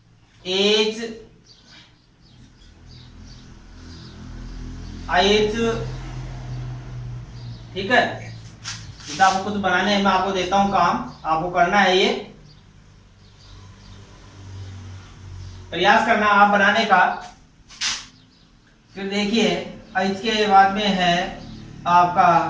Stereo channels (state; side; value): identical; both; correlation 1.00